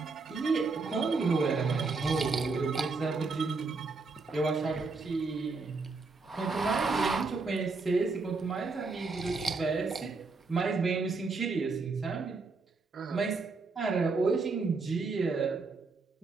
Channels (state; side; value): quieter; left; 4.0 dB